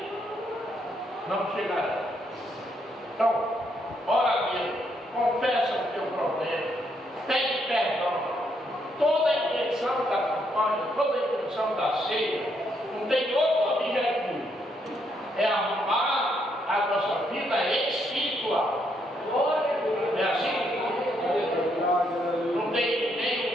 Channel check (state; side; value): normal; both; correlation 0.75